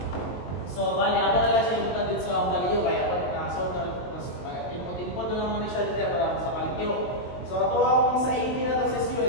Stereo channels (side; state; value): right; late; 22 ms